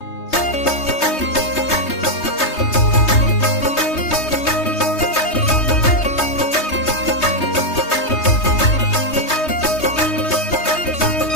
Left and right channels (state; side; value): late; right; 3.2 ms